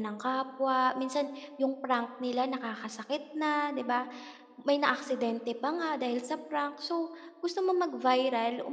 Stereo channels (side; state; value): both; identical; correlation 1.00